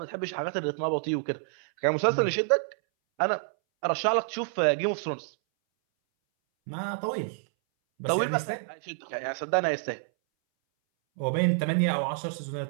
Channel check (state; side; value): silent; left; 59 dB below the other